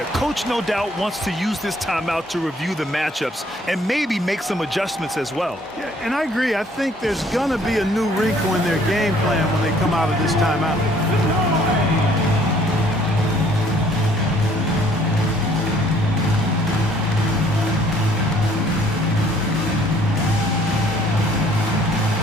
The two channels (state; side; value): normal; both; correlation 0.60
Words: coach no doubt wants to use this timeout to review the matchups and maybe make some adjustments as well. Yeah, and I agree. I think there's going to be a new wrinkle in their game plan when they come out of this timeout.